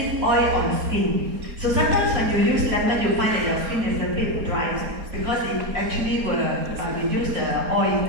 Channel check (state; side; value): late; left; 4.3 ms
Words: oil on skin. So sometimes when you use lemon, you find that your skin is a bit dry because it actually will reduce the oil.